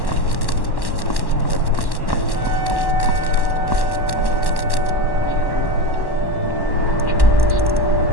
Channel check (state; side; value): late; right; 1.1 ms